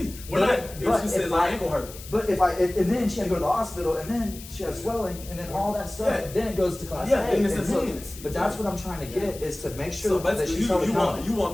We're not. If she says my ankle hurt. But if and then she had to go to the hospital, and then she had swelling, and then all that stuff, Yeah. then it goes to Class Yeah, A. and it's and so- intense. But that's what I'm trying to get is to make sure So that basically, she's held you accountable. want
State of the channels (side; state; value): left; noise; hiss, 16 dB below the sound